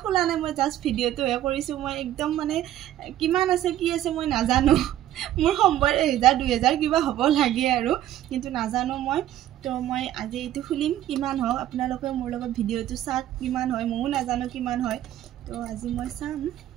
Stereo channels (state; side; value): quieter; left; 12.7 dB